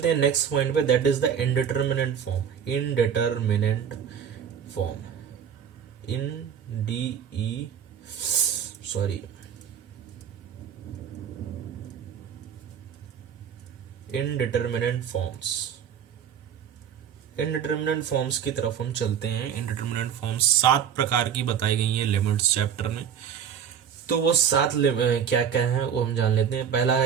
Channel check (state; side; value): quieter; left; 8.2 dB